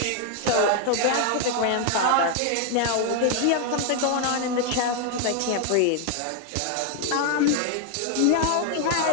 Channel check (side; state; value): both; different; correlation 0.00